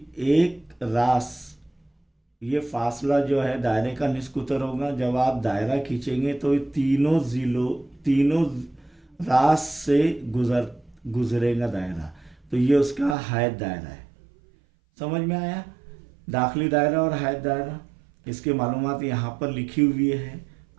एक रास, ये फासला जो है दायरे का निस्फ उत्तर होगा। जब आप दायरा खींचेंगे तो ये तीनों रास से गुजरेगा दायरा, तो ये उसका हैद दायरा है। समझ में आया? दाखिली दायरा और हैद दायरा, इसके मालूमात यहाँ पर लिखी हुई है,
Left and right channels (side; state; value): left; drops out; at 13.2 s